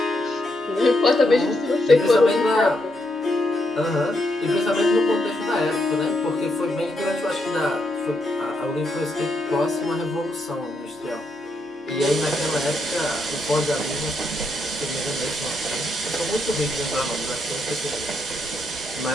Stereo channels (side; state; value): both; normal; correlation 0.79